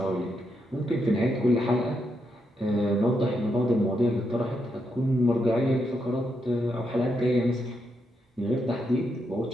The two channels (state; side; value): normal; both; correlation 0.81